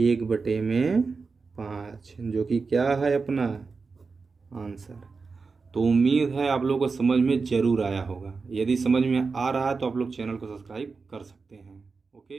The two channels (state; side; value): quieter; left; 4.6 dB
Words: जो कि क्या है अपना आंसर। तो उम्मीद है आप लोगों को समझ में ज़रूर आया होगा। यदि समझ में आ रहा है तो आप लोग चैनल को सब्सक्राइब कर सकते हैं।